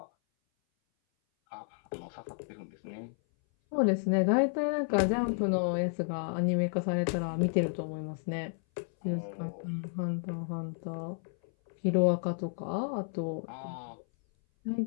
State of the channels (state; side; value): silent; right; 56 dB below the other